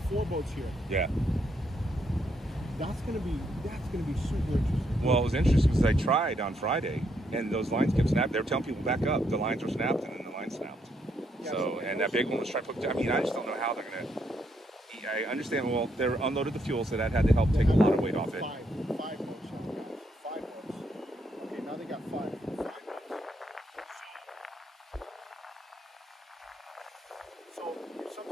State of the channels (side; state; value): both; normal; correlation 0.75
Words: boats here. Yeah. That's gonna be super interesting. Well, it was interesting because I tried on Friday, and those lines kept snapping. They were telling people back up. The lines were snapped, and then the line snapped. Yeah, so, and that big one was trying to put. I mean, I just don't know how they're gonna. I understand. Well, they unloaded the fuel, so that had to help take a lot of weight off it. Five boats. Five boats. Okay, now they got five. So